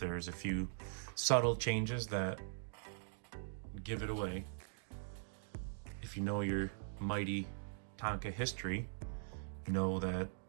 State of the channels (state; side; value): silent; left; digital silence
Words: a few subtle changes that give it away. If you know your Mighty Tonka history, you know that